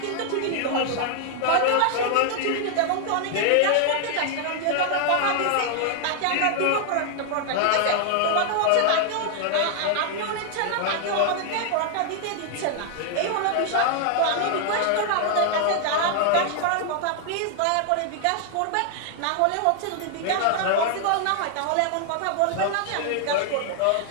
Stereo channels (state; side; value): different; both; correlation 0.00